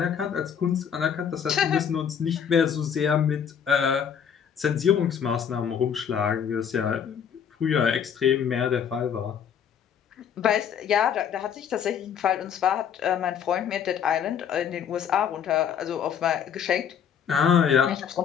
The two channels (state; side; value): quieter; right; 8.0 dB